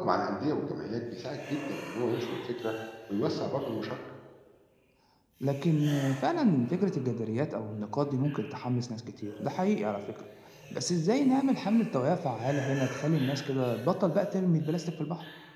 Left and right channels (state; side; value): identical; both; correlation 1.00